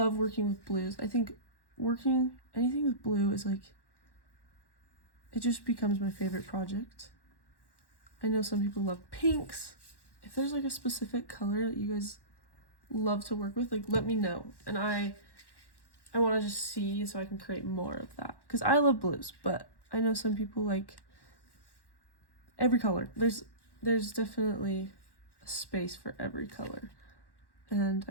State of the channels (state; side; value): late; right; 1.1 ms